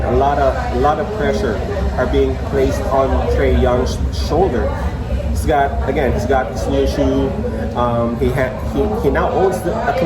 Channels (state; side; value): identical; both; correlation 1.00